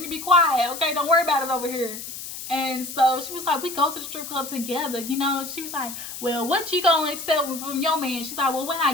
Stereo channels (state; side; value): noise; left; hiss, 9 dB below the sound